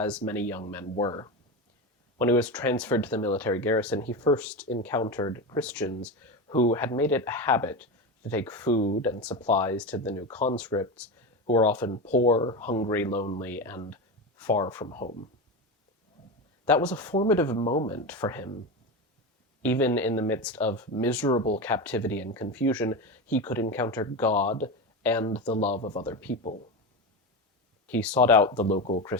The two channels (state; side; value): normal; both; correlation 0.20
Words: many young men were. When he was transferred to the military garrison, he first encountered Christians who had made it a habit to take food and supplies to the new conscripts, who were often poor, hungry, lonely, and far from home. That was a formative moment for him. Even in the midst of miserable captivity and confusion, he could encounter God and the love of other people. He sought out the local